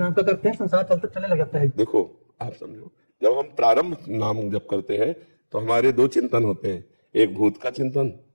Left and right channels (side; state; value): both; inverted; correlation -1.00